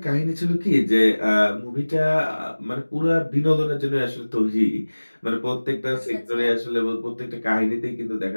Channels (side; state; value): both; inverted; correlation -1.00